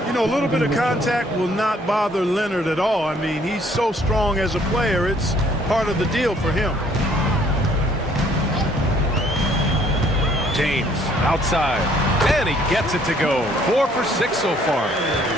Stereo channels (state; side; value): normal; both; correlation 0.62